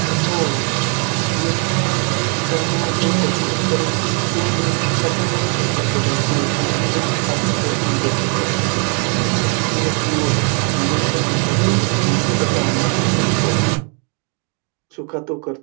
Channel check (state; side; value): quieter; left; 38.1 dB